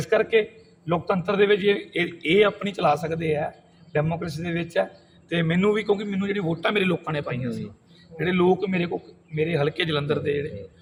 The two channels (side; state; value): both; identical; correlation 1.00